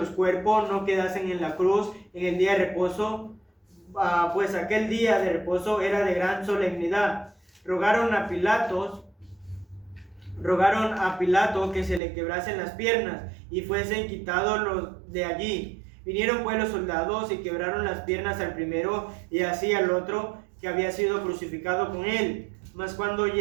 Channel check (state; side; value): drops out; left; at 12.0 s